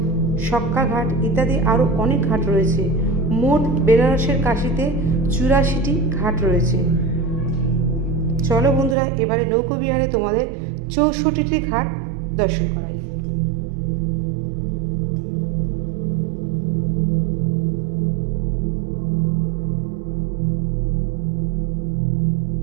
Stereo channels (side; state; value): left; drops out; at 9.0 s